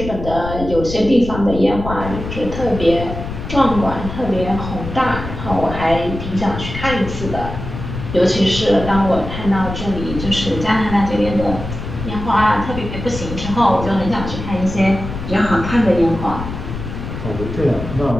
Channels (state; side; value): noise; left; rumble, 8 dB below the sound